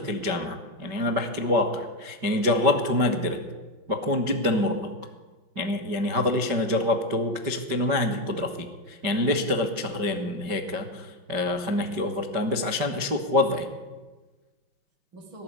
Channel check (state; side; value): late; left; 5.2 ms